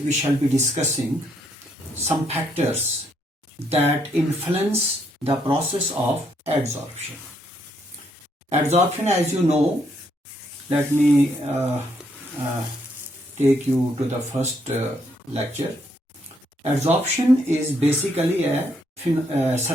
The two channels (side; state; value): both; normal; correlation 0.73